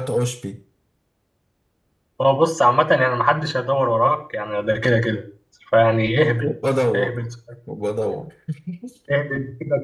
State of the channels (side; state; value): both; identical; correlation 1.00